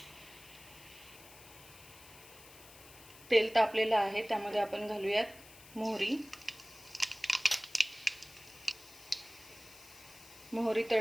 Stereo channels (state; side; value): noise; left; hiss, 20 dB below the sound